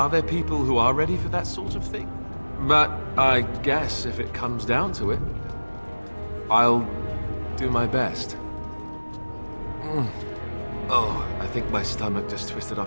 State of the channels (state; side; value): inverted; both; correlation -1.00